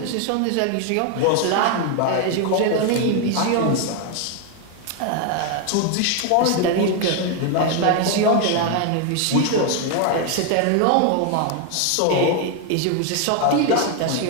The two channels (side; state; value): both; different; correlation 0.01